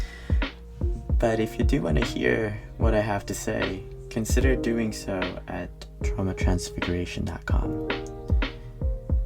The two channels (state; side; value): identical; both; correlation 1.00